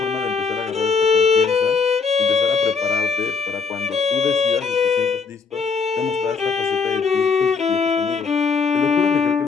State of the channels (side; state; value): right; quieter; 5.2 dB